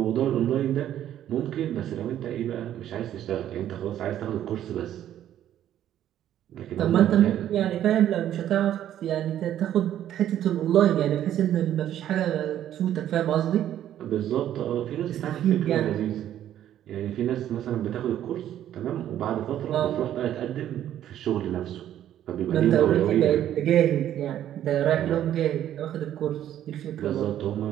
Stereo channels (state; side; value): quieter; left; 11.4 dB